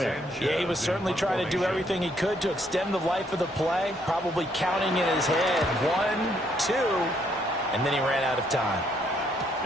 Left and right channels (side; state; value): both; normal; correlation 0.70